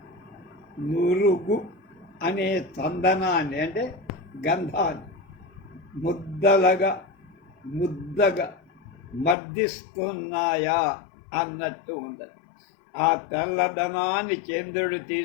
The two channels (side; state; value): right; drops out; at 9.3 s